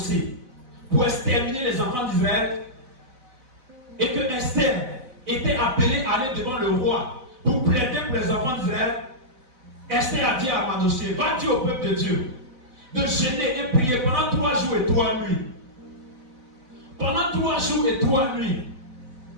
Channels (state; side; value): late; left; 4.0 ms